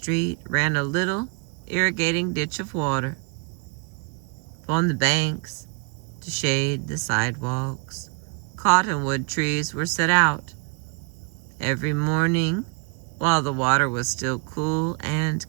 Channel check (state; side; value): quieter; left; 32.2 dB